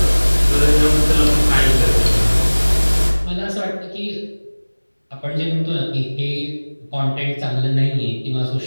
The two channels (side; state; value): both; inverted; correlation -1.00